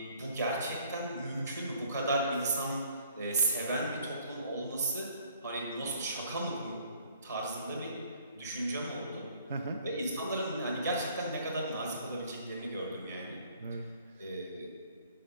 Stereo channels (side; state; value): both; inverted; correlation -0.59